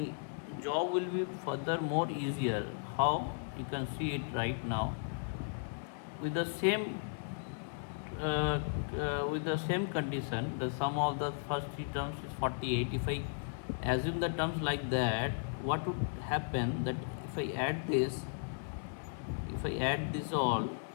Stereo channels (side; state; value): right; silent; digital silence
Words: job will be further more easier. How? You can see it right now. With the same condition, the sum of the first three terms is 48. If I assume the terms like that, what would happen that if I add this all,